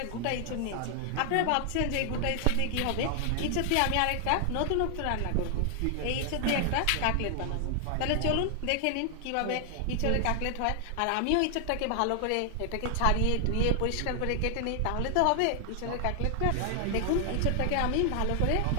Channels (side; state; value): both; different; correlation 0.00